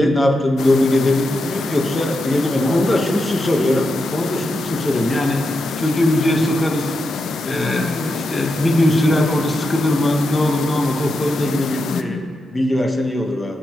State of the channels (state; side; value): normal; both; correlation 0.86